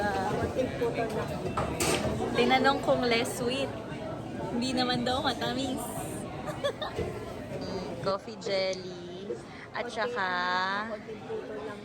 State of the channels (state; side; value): identical; both; correlation 1.00